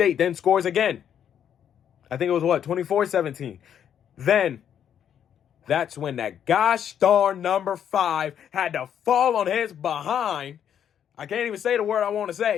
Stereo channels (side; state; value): right; quieter; 9.1 dB